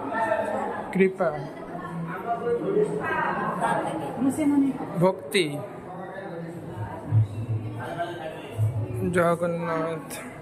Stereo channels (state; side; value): identical; both; correlation 1.00